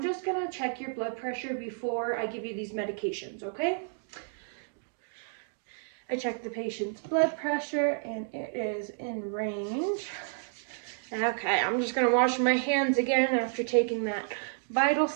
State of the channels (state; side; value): silent; left; digital silence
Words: just gonna check your blood pressure before I give you these medications, okay? I checked the patient's blood pressure and it is in range. Okay, I'm just gonna wash my hands again after taking that vital